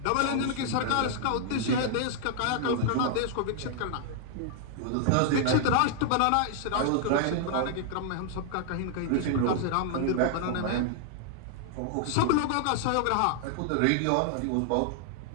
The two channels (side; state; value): both; different; correlation -0.01